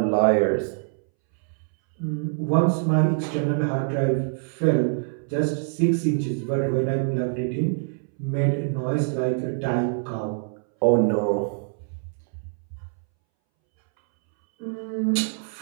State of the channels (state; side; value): silent; left; 62 dB below the other